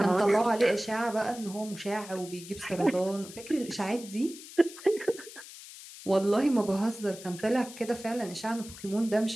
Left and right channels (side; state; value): left; noise; hiss, 15 dB below the sound